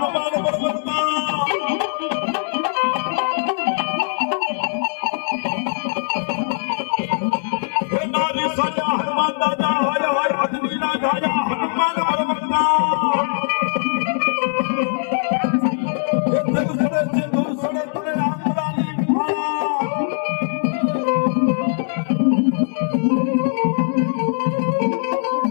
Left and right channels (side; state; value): right; silent; digital silence